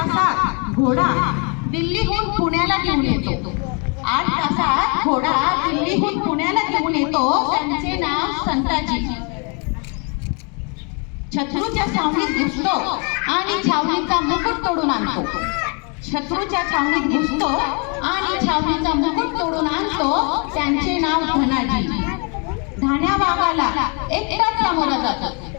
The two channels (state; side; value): quieter; right; 35.4 dB